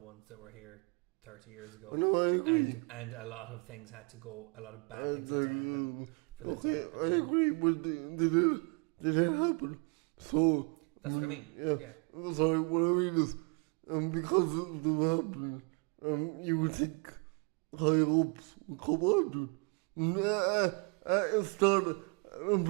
that were here 30 years ago. No, I agree. And a lot of things had to go, a lot of bad things had to happen for that to happen. I agree, but did it happen? So that's what I mean. Yeah. Sorry, what I mean is, because of the happening, you would think higher ups would come on to it. I started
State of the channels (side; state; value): left; quieter; 33.6 dB